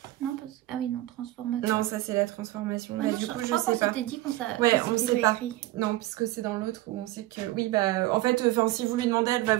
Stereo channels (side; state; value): left; quieter; 16.9 dB